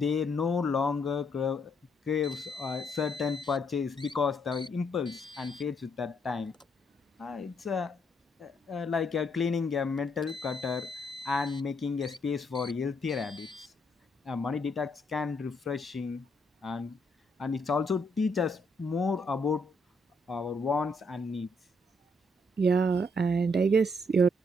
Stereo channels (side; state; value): both; normal; correlation 0.73